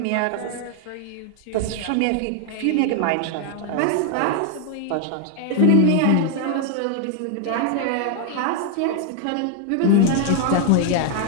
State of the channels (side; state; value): both; different; correlation 0.00